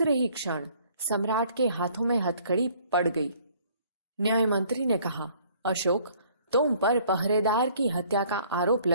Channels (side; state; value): both; inverted; correlation -0.58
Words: ही क्षण सम्राट के हाथों में हथकड़ी पड़ गई। न्याय मंत्री ने कहा, अशोक, तुम पर पहरेदार की हत्या का आरोप